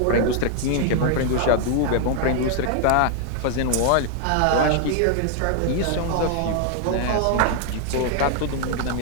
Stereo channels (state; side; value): different; both; correlation 0.00